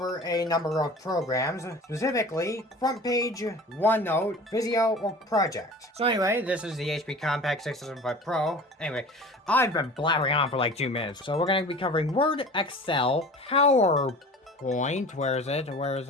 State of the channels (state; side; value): normal; both; correlation 0.40